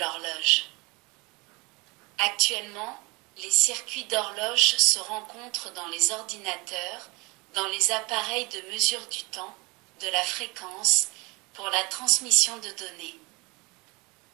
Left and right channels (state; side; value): quieter; left; 26.5 dB